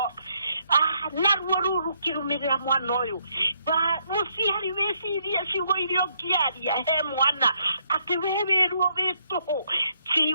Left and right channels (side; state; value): both; inverted; correlation -0.73